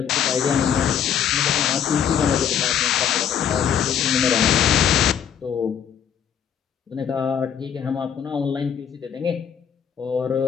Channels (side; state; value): right; quieter; 8.5 dB